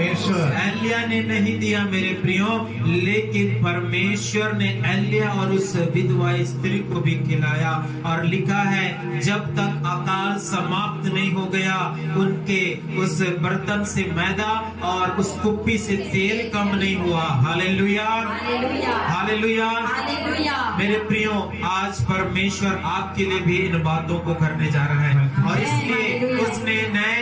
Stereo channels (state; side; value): identical; both; correlation 1.00